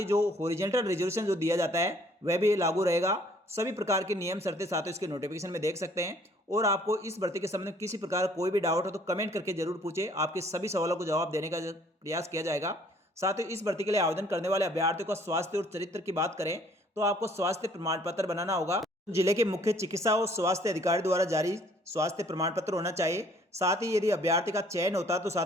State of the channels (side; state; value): both; normal; correlation 0.59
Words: जो हॉरिजॉन्टल रिजर्वेशन जो दिया जाता है वह भी लागू रहेगा। सभी प्रकार के नियम शर्तें साथियों इसके नोटिफिकेशन में देख सकते हैं। और आपको इस भर्ती के संबंध में किसी प्रकार कोई भी डाउट हो तो कमेंट करके जरूर पूछे, आपके सभी सवालों को जवाब देने का प्रयास किया जाएगा। साथ ही इस भर्ती के लिए आवेदन करने वाले अभ्यर्थियों का स्वास्थ्य और चरित्र की बात करें तो आपको स्वास्थ्य प्रमाण पत्र बनाना होगा। जिले के मुख्य चिकित्सा और स्वास्थ्य अधिकारी द्वारा जारी स्वास्थ्य प्रमाण पत्र होना चाहिए। साथ ही यदि अभ्यर्थी का चयन होता है तो